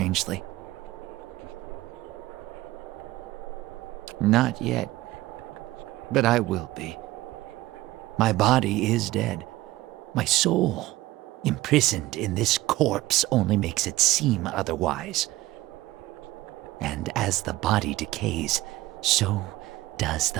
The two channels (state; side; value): quieter; left; 17.4 dB